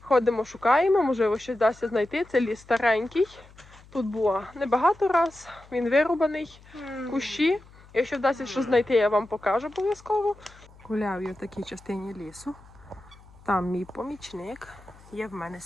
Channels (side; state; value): left; noise; hum, 24 dB below the sound